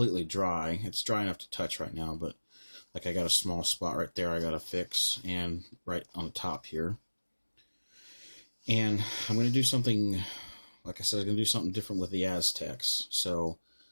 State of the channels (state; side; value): inverted; both; correlation -1.00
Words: dry. It's dry enough to touch right now, but like I got a small spot right there I got to fix, and right on the top here. And I'm going to do something, like I said, I'm going to do something different with the Aztecs. So